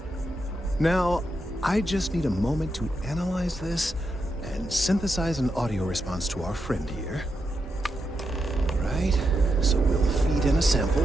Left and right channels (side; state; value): both; normal; correlation 0.85